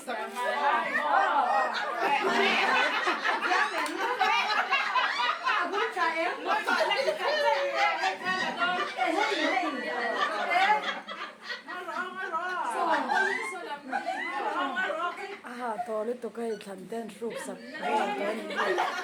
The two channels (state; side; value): identical; both; correlation 1.00